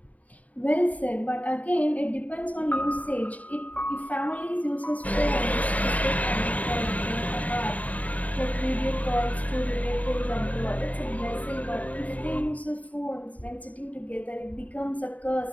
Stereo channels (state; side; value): late; right; 0.071 ms